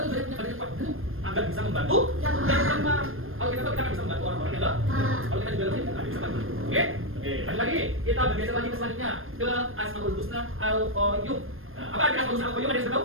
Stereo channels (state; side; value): late; left; 0.60 ms